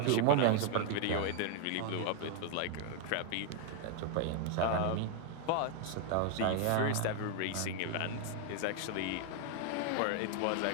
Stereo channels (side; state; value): both; different; correlation 0.00